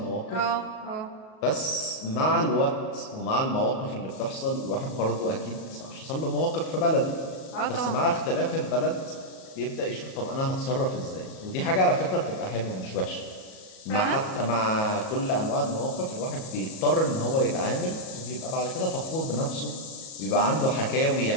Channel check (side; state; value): right; late; 37 ms